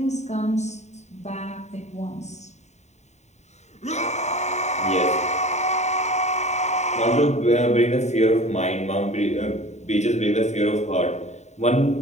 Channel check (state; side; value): late; right; 0.33 ms